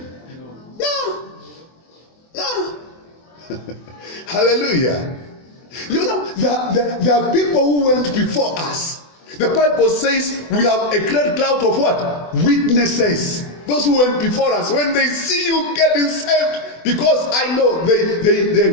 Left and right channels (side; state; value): right; late; 24 ms